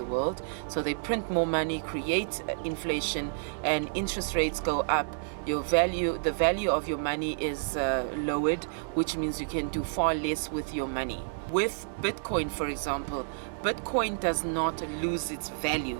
world. So they print more money, create inflation, and interest rates go up. The value of your money is lowered, which means you can do far less with your money. With Bitcoin, for example, Bitcoin does not lose its value.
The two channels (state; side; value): silent; left; digital silence